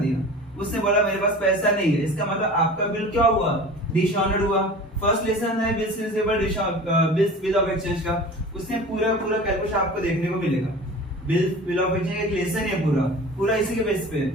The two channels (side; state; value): both; normal; correlation 0.38